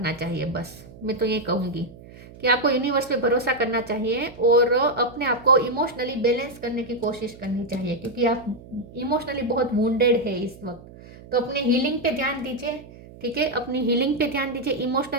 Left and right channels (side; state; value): right; noise; hum, 19 dB below the sound